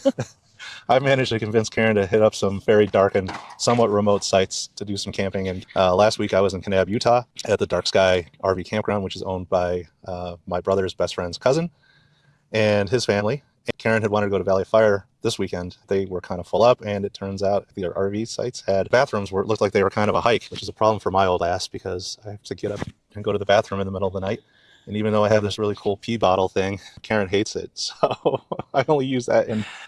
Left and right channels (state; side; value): identical; both; correlation 1.00